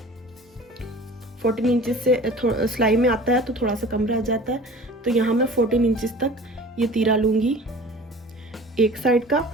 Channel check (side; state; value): both; normal; correlation 0.43